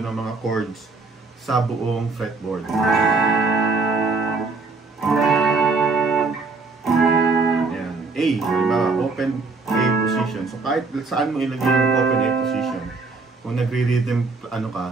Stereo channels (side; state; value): left; quieter; 4.0 dB